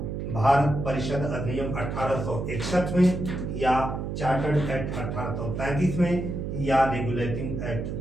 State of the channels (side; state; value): right; noise; hum, 4 dB below the sound